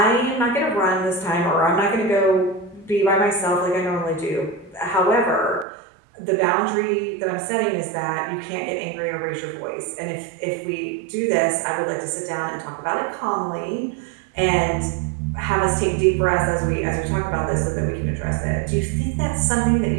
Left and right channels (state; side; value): drops out; left; at 5.7 s